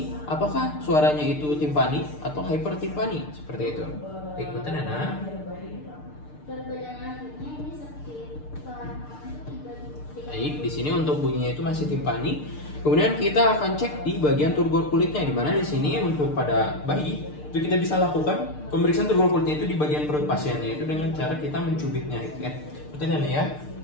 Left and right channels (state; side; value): late; right; 6.7 ms